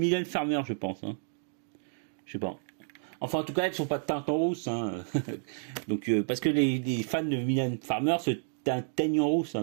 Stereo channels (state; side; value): silent; left; digital silence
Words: Farmer je pense. Hein. Je sais pas. Enfin en tout cas elles sont pas teintes en rousse. Hein. Donc parce que les fans de Mylène Farmer se teignent en rousse,